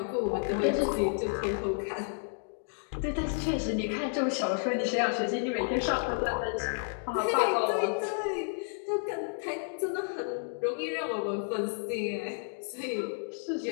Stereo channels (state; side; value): silent; right; digital silence